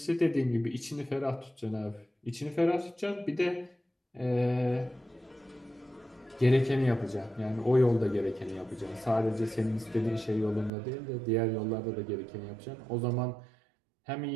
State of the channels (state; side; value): drops out; left; at 10.7 s